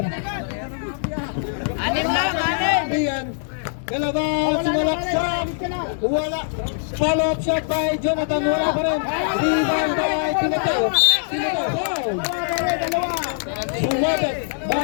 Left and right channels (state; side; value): silent; right; 64 dB below the other